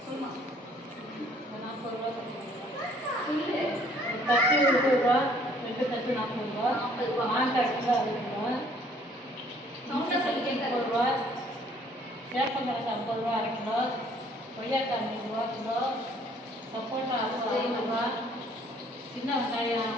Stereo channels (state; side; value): normal; both; correlation 0.60